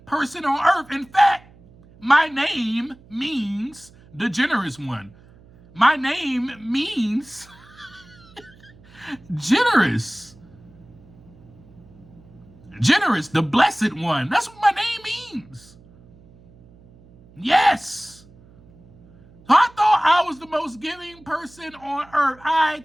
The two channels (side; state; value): right; noise; hum, 25 dB below the sound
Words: person on earth. In fact, my name means the generous one. My name means generous. Generous, the blessed one. That's what my name means. Yes. So I thought I was the most giving person on earth. I